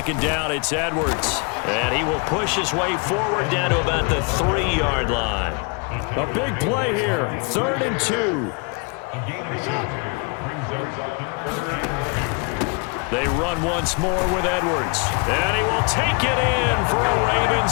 down, it's Edwards. And he will push his way forward down to about the 3-yard line. A big play here. 3rd and 2. They run once more with Edwards. And he will take it in for a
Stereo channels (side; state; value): right; quieter; 34.0 dB